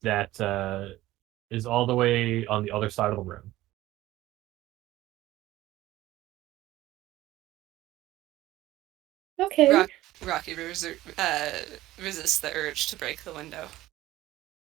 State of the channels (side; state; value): left; quieter; 16.1 dB